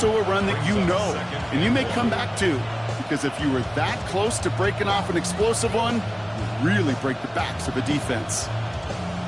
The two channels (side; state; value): both; identical; correlation 1.00